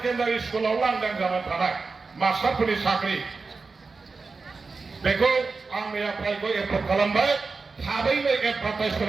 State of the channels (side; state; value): left; quieter; 4.3 dB